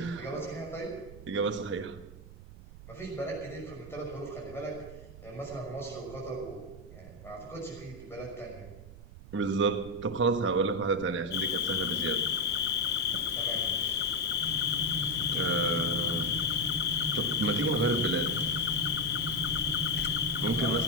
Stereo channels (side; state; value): right; noise; rumble, 16 dB below the sound